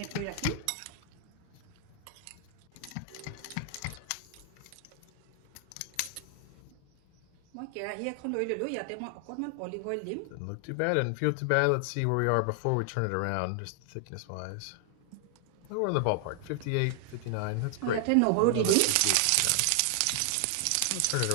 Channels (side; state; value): both; different; correlation 0.00